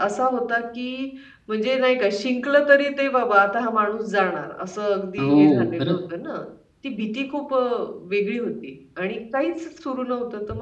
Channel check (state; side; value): identical; both; correlation 1.00